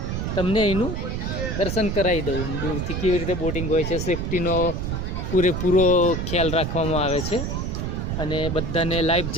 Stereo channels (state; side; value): noise; right; rumble, 2 dB below the sound